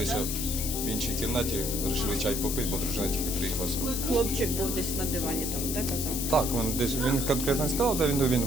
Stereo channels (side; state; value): left; noise; hiss, 3 dB below the sound